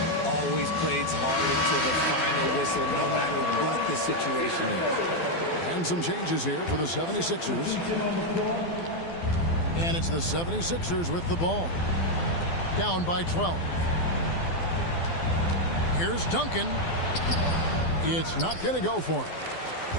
Always plays hard until the final whistle, no matter what the situation is. And some changes here for the 76ers. And it's the 76ers with the ball. Down by 12. Here's Duncan. It's not going to go for him.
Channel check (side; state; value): right; late; 12 ms